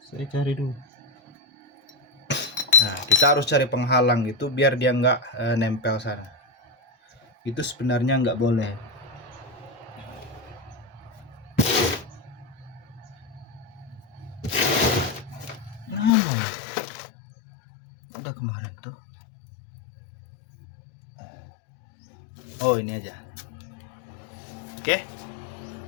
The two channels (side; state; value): right; drops out; at 16.1 s